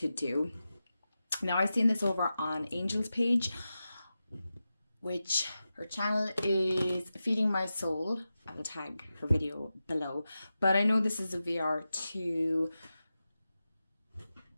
do. Now, I've seen this over on Angel's page, which her channel is Feeding My Soul. I will tag her video below, but I know this is a VR to,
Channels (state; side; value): inverted; both; correlation -0.92